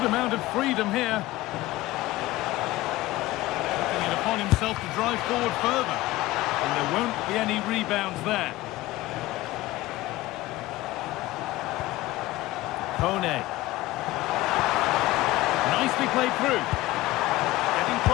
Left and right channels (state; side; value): quieter; right; 17.7 dB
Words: amount of freedom here. Taking it upon himself to drive forward further. And there won't be any rebounds there. Kone. Nicely played through.